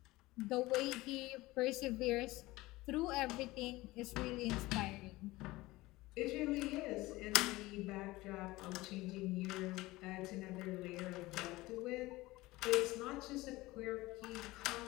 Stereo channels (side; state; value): right; quieter; 19.6 dB